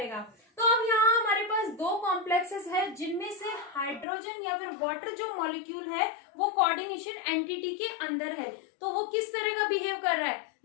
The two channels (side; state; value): right; drops out; at 4.0 s